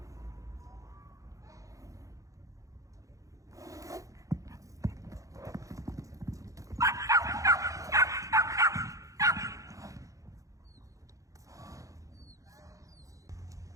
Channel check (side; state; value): left; late; 0.16 ms